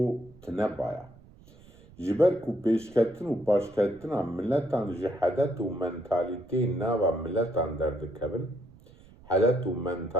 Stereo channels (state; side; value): noise; right; rumble, 24 dB below the sound